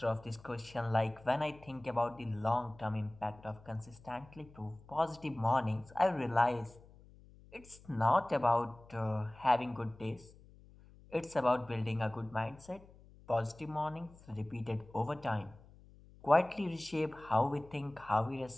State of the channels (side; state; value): left; noise; hum, 23 dB below the sound